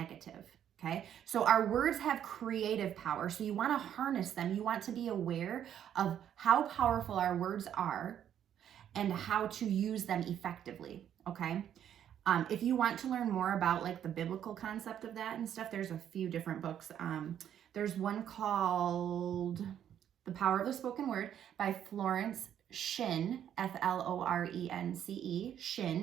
Okay, so our words have creative power. So you want to harness them. You want to be aware of how powerful our words are and how to use them effectively. Okay, if you want to learn more about like the biblical concept of that and stuff, there's a few different books. There's one called The Power of the Spoken Word by Florence Shinn, Florence, Shinn,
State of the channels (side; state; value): left; quieter; 9.9 dB